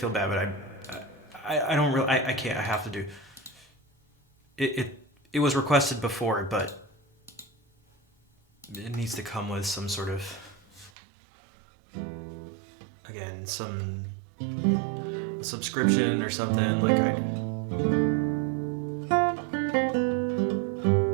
bad, but I don't really, I can't, I have to do. It was requested before, but it needs to come with some sort of, again, some subscription or something, like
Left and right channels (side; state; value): left; drops out; at 10.9 s